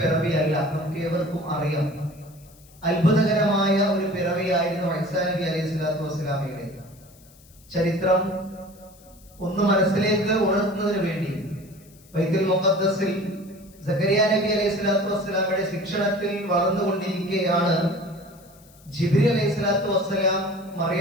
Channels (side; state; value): left; noise; hiss, 27 dB below the sound